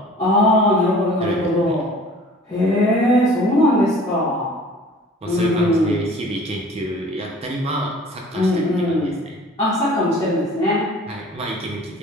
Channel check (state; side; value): normal; both; correlation 0.48